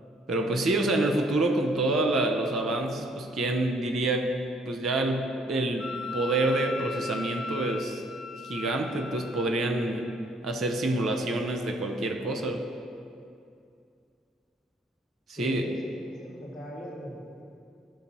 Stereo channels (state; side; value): normal; both; correlation 0.63